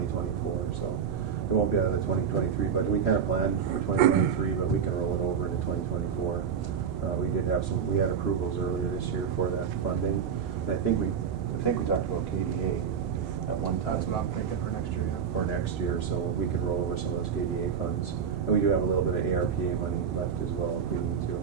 So it won't be out of the 2023 budget. We kind of planned for 2023, but we can roll it over into 2024. We had approvals earlier this year for that funding, and I think we talked about KDA at one time. That's what I'm thinking for next year, yeah. For next year, so we could roll over some of those KDA funds, and we do have a little bit of ARPA money left as well if we need to.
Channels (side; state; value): left; quieter; 7.2 dB